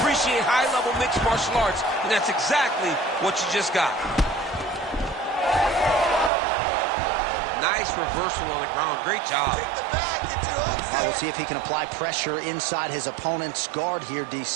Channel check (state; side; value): drops out; left; at 6.3 s